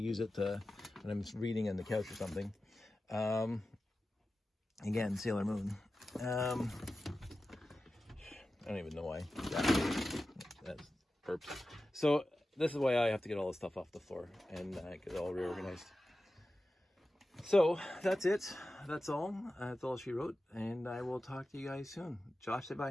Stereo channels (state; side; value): normal; both; correlation 0.94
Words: it when I'm reading on the couch or something. Again, Sailor Moon. I don't even know why. That's perps. So this is why I have to get all this stuff off the floor and get it all reorganized. So that's it. That's all. That's all she wrote. And I will talk to you guys soon. Josh, say